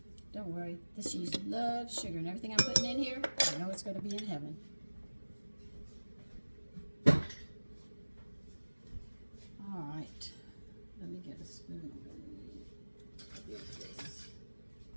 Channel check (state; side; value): inverted; both; correlation -1.00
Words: Don't worry, this cheese loves sugar, and everything I'm putting in here, I know it's going to be in heaven. All right, let me get a spoon.